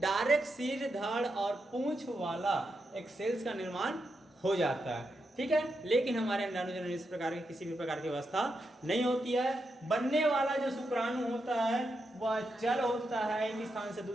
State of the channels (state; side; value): normal; both; correlation 0.85